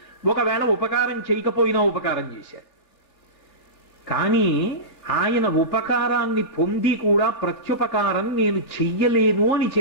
ఒకవేళ ఉపకారం చేయకపోయినా ఉపకారం చేశారు. కానీ ఆయన ఉపకారాన్ని పొంది కూడా ప్రత్యుపకారం నేను చెయ్యలేను అని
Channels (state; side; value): late; right; 3.4 ms